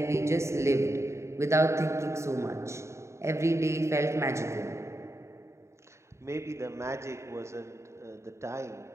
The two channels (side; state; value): left; late; 0.14 ms